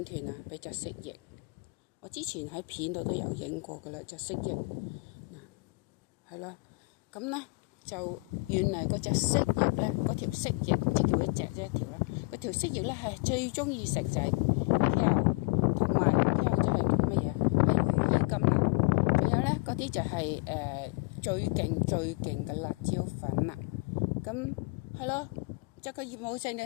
斷啊？俾隻蜥蜴。我之前喺片度都有影過噶啦，隻蜥蜴。嗱，係啦。咁咧就原嚟嗰隻蜥蜴咧，嗰條蜥蜴即叫一隻啫一條啦。嗰條蜥蜴咧係最中意食就係條，同埋條就係乜嘢？係羽衣甘藍。仲有咧嗰啲就係最勁嘅辣椒粉啦。咁係咯。就個業務性，你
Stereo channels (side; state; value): right; quieter; 28.3 dB